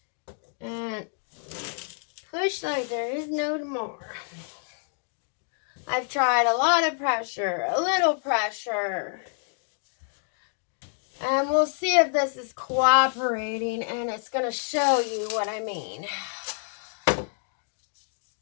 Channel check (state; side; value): silent; right; 59 dB below the other